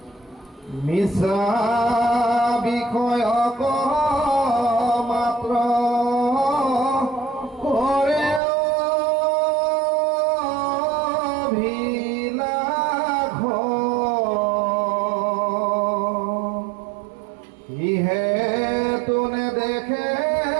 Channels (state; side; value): drops out; left; at 8.4 s